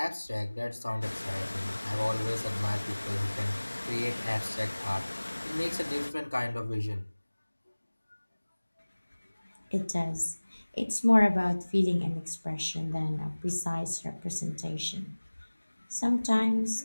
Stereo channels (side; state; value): both; inverted; correlation -1.00